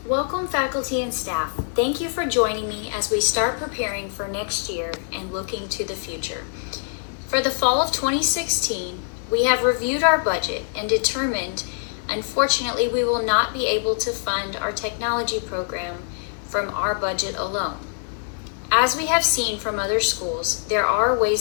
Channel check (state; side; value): silent; right; 61 dB below the other